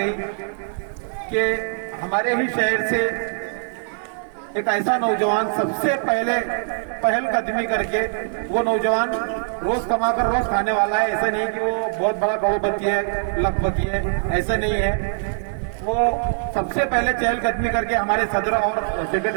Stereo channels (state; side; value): silent; left; 61 dB below the other